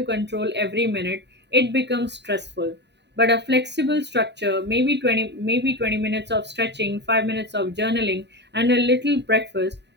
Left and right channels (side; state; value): left; late; 0.50 ms